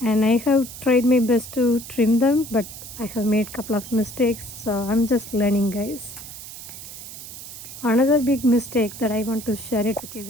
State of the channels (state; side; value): noise; right; hiss, 13 dB below the sound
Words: and I have tried my best to trim them, but I have made a couple of mistakes, so I'm just learning, guys. Another big mistake that I want to share it with you